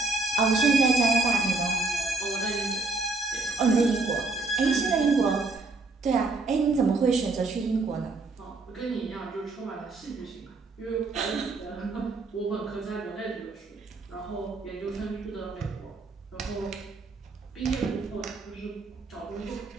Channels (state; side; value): quieter; left; 3.6 dB